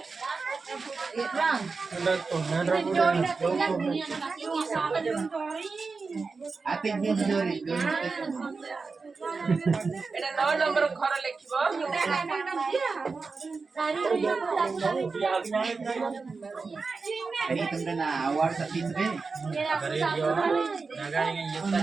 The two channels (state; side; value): quieter; left; 4.4 dB